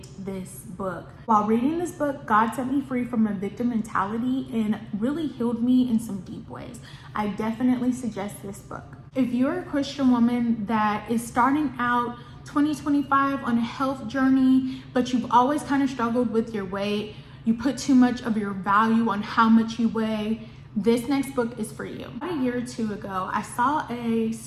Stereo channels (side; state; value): both; identical; correlation 1.00